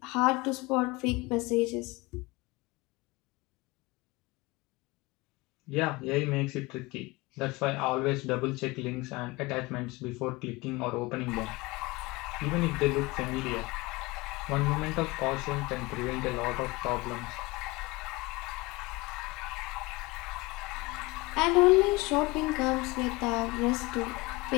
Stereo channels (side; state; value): right; quieter; 23.1 dB